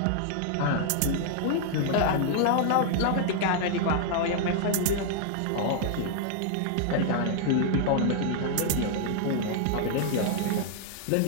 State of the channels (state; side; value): different; both; correlation -0.01